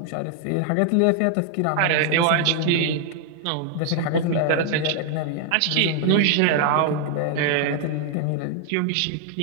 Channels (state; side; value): different; both; correlation 0.00